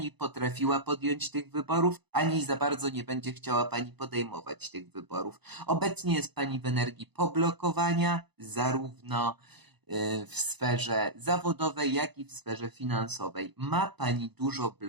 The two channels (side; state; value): left; late; 0.99 ms